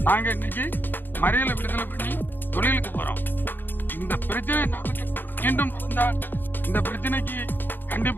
நாங்கள் இன்னைக்கு மறியலை விடுதலை பண்ணி தொழிலுக்கு போகிறோம். இந்த பிரச்சனை மீண்டும் நடந்தால் இந்த பிரச்சனைக்கு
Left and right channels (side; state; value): right; late; 0.093 ms